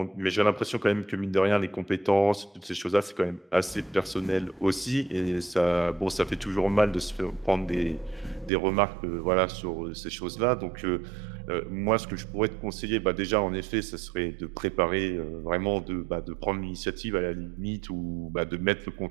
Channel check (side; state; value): left; drops out; at 8.5 s